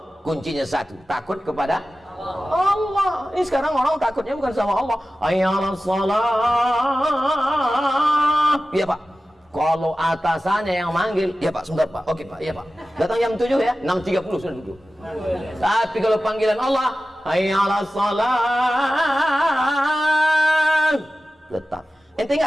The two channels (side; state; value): both; normal; correlation 0.95